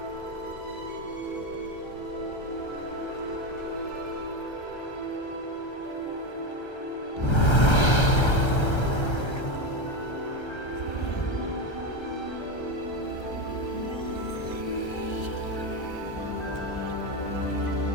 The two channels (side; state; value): right; late; 1.3 ms